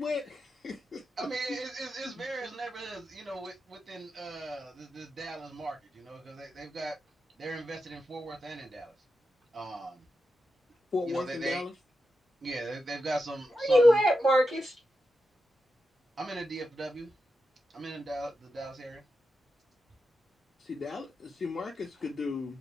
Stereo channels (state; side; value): normal; both; correlation 0.89